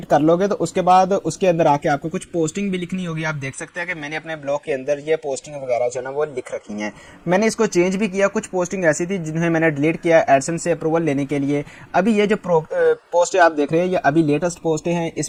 कर लोगे तो उसके बाद उसके अंदर आके आपको कुछ पोस्टिंग भी लिखनी होगी। आप देख सकते हैं कि मैंने अपने ब्लॉग के अंदर ये पोस्टिंग वगैरह जो है ना वो लिख रखी हैं। मैंने इसको चेंज भी किया, कुछ पोस्टिंग ऐसी थी जिन्हें मैंने डिलीट किया एडसेंस से अप्रूवल लेने के लिए। अभी ये जो पोस्ट आप देख रहे हैं ये अभी लेटेस्ट पोस्ट हैं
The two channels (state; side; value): identical; both; correlation 1.00